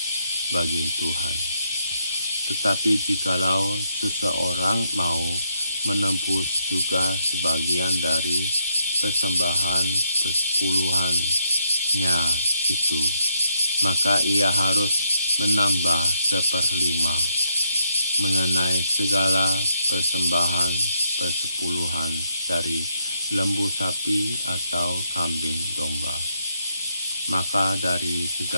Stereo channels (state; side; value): inverted; both; correlation -0.77